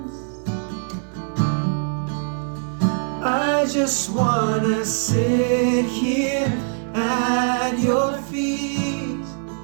I just wanna sit here at your feet.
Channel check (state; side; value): silent; left; 56 dB below the other